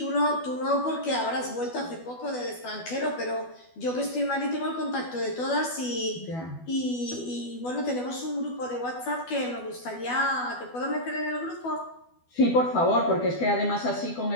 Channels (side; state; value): right; late; 12 ms